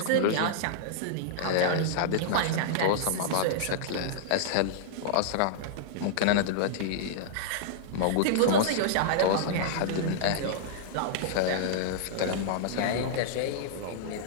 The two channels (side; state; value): both; different; correlation -0.02